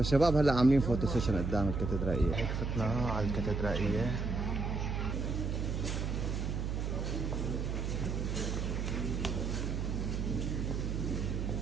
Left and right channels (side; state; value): right; noise; hum, 1 dB below the sound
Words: هلا عاملين فوتو سيشن قدام الكاتدرائية. هيك فتنا على الكاتدرائية.